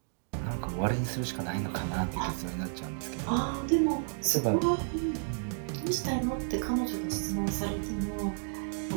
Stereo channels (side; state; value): left; silent; digital silence